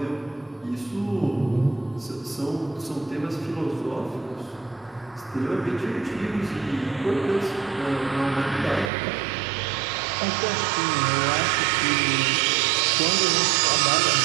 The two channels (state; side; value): drops out; left; at 8.9 s